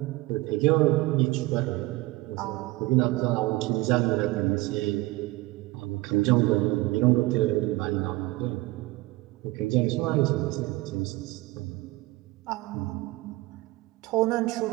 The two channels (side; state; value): left; quieter; 20.1 dB